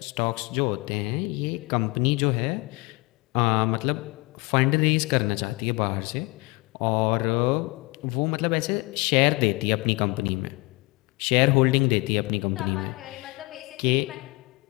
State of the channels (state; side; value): quieter; right; 25.2 dB